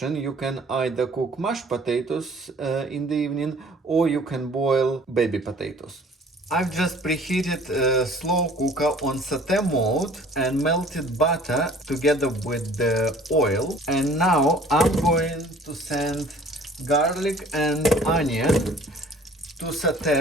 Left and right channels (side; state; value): both; normal; correlation 0.51